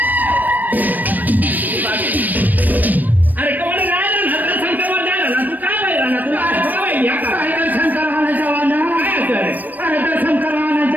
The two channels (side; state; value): left; late; 0.086 ms